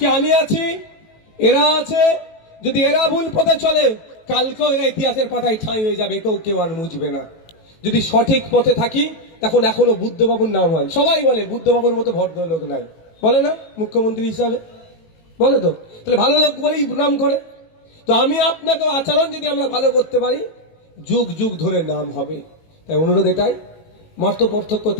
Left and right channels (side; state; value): right; late; 18 ms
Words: আমি আছি, এরা আছে, যদি এরা ভুল পথে চলে, কালকেও এরা ইতিহাসের পাতায় ঠাঁই হয়ে যাবে, কেউ আর মুছবে না। যদি সঠিক পথে থাকি, তখন এখনো বুদ্ধবাবুর নাম হয়। সবাই বলে বুদ্ধবাবুর মতো ভদ্রলোক নাই, বলে না মুখ্যমন্ত্রী হিসাবে? বলে তো, তাহলে ভালো লোক বলেই নাম করে। তো আমি আপনাকে আচরণ যদি আমরা ভালো করতে পারি, যুগ যুগ ধরে নাম হবে। তাই অনুরোধ এটাই, মত পার্থক্য